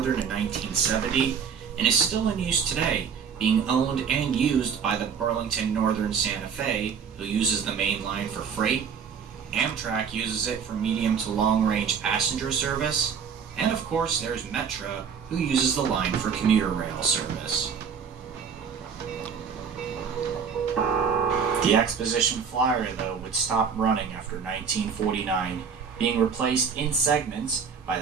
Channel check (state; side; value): quieter; left; 6.6 dB